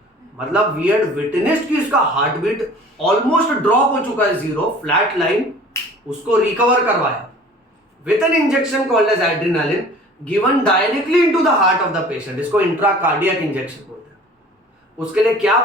मतलब वी हैड विटनेस्ड कि इसका हार्ट बीट ऑलमोस्ट ड्रॉप हो चुका है, 0 फ्लैट लाइन, उसको रिकवर करवाया with an injection called as adrenaline given directly into the heart of the patient. इसको इंट्राकार्डियक इंजेक्शन बोलते हैं। उसके लिए क्या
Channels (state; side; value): normal; both; correlation 0.46